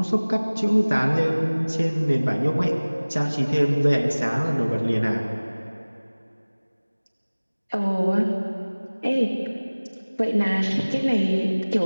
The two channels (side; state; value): both; inverted; correlation -1.00